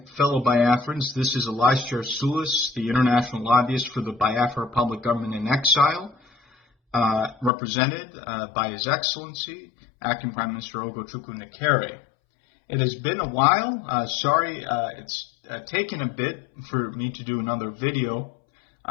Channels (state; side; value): drops out; right; at 7.5 s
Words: fellow Biafrans. This is Elijah Sulis, the international lobbyist for the Biafra Republic Government in Exile, represented by His Excellency, Acting Prime Minister Ogochukwu Nekere. It has been a while. Sorry, it's taken a bit for me to do another video.